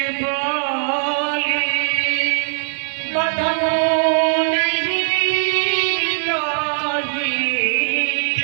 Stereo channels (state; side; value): silent; left; digital silence